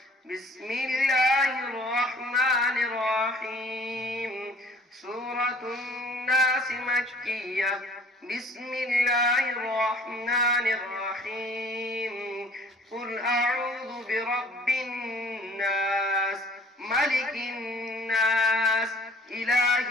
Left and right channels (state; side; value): normal; both; correlation 0.52